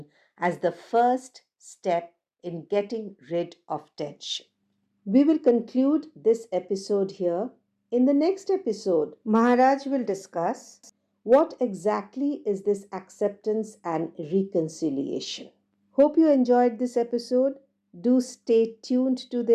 as the first step in getting rid of tension. We will conclude this episode here. In the next episode, Maharaj will discuss what exactly is this acceptance and reconciliation. Hope you enjoyed this episode. Do stay tuned to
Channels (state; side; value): identical; both; correlation 1.00